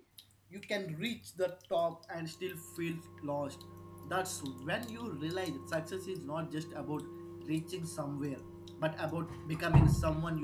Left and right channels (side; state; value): both; identical; correlation 1.00